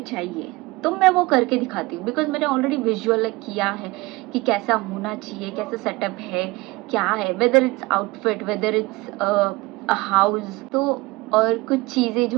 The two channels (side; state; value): left; quieter; 22.4 dB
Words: चाहिए, तो मैं वो करके दिखाती हूँ। बिकॉज मैंने ऑलरेडी विजुअल किया है कि कैसा होना चाहिए, कैसा सेटअप है, क्या है, whether it's outfit, whether it's a house, तो और कुछ चीज़ें